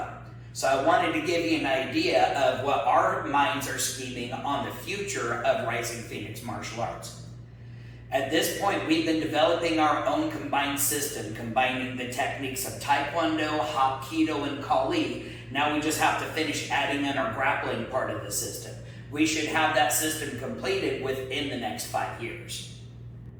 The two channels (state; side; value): identical; both; correlation 1.00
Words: So I wanted to give you an idea of what our minds are scheming on the future of Rising Phoenix Martial Arts. At this point, we've been developing our own combined system, combining the techniques of Taekwondo, Hapkido, and Kali. Now we just have to finish adding in our grappling part of the system. We should have that system completed within the next 5 years.